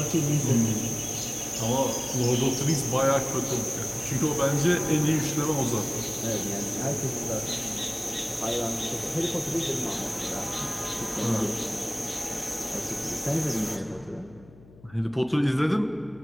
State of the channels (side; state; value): left; noise; hum, 23 dB below the sound